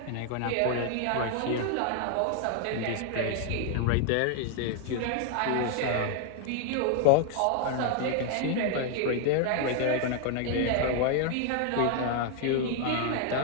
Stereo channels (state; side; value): different; both; correlation 0.00